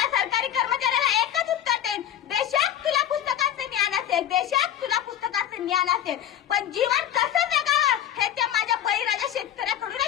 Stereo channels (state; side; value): quieter; right; 10.6 dB